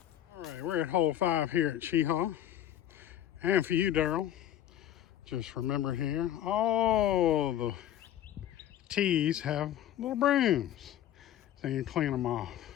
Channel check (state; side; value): quieter; right; 11.5 dB